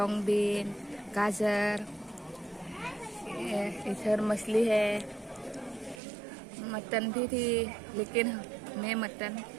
बीन, गाजर, इधर मछली है, मटन भी थी, लेकिन मैं मटन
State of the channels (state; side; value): drops out; left; at 6.0 s